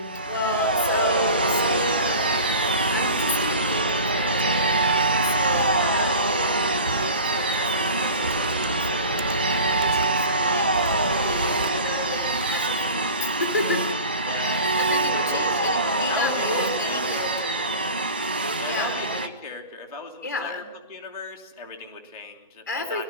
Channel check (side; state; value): both; inverted; correlation -0.37